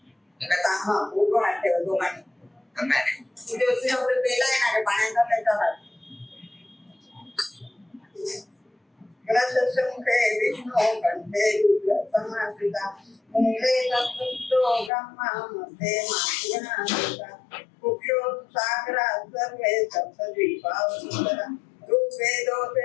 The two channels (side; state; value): right; drops out; at 14.9 s